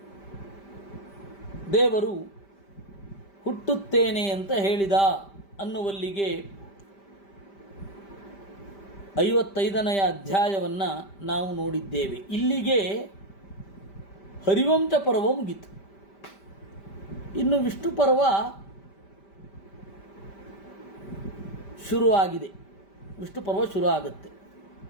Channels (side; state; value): right; late; 5.1 ms